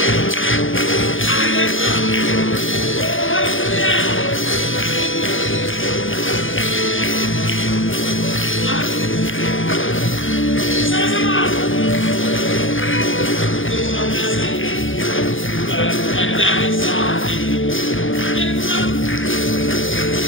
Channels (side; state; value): right; late; 0.58 ms